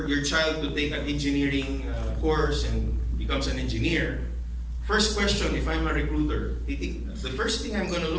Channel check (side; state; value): both; identical; correlation 1.00